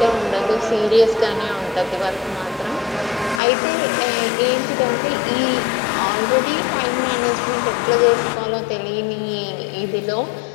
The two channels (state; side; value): drops out; right; at 3.4 s